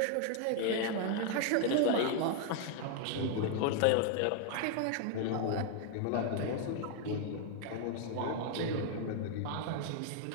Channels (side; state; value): both; different; correlation 0.00